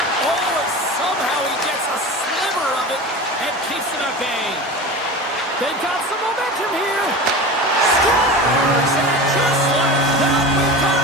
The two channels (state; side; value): normal; both; correlation 0.31